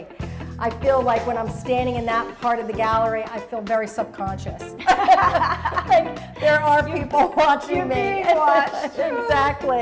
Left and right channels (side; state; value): both; identical; correlation 1.00